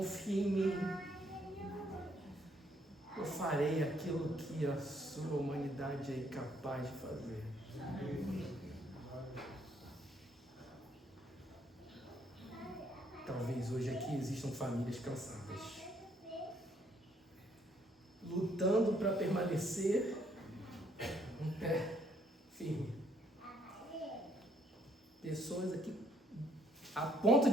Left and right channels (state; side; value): normal; both; correlation 0.68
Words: em mim, eu farei aquilo que a sua humanidade é incapaz de fazer. Talvez hoje aqui existam famílias cansadas, lutando para permanecer um pé firme. Pessoas aqui a ponto